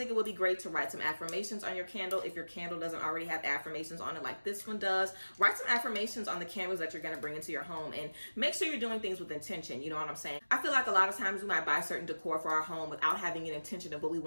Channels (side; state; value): both; inverted; correlation -1.00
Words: it would be great to write some affirmations on your candle. If your candle doesn't already have affirmations on it like this one does, write some affirmations on the candles that you're going to bring into your home, and make sure you're doing things with intention. You know what I'm saying? I feel like a lot of times we might buy certain decor for our home without having an intention of what we